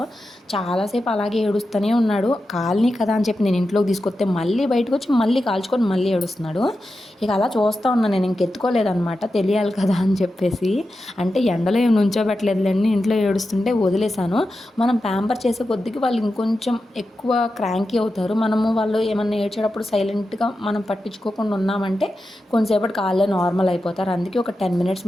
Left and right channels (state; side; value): normal; both; correlation 0.91